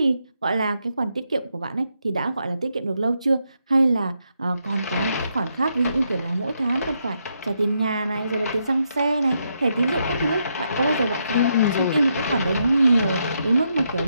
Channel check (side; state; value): both; inverted; correlation -0.80